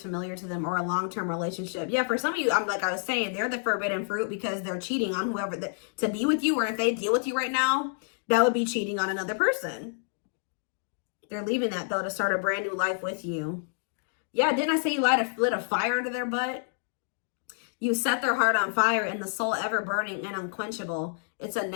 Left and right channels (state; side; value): silent; right; digital silence